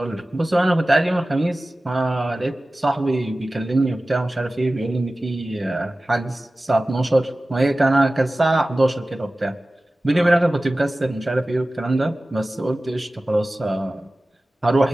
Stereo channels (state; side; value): normal; both; correlation 0.96